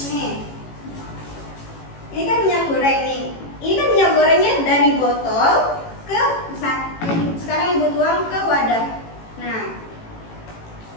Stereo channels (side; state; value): right; late; 18 ms